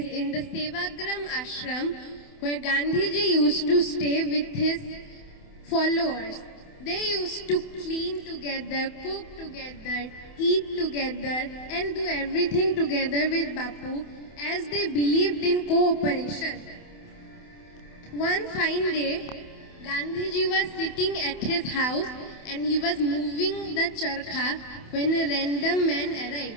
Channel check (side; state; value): right; late; 28 ms